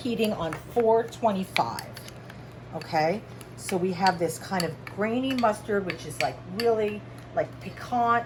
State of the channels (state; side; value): identical; both; correlation 1.00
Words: on 425. Okay, so we have this kind of grainy mustard, which is like really like